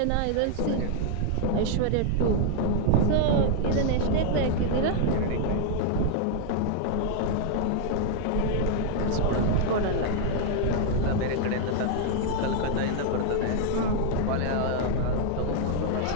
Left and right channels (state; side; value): different; both; correlation 0.00